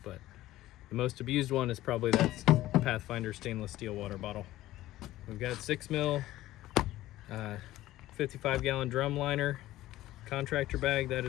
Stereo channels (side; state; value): right; quieter; 15.6 dB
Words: but the most abused one is probably that Pathfinder stainless steel water bottle. We've got 6 mil 55 gallon drum liner contractor bag that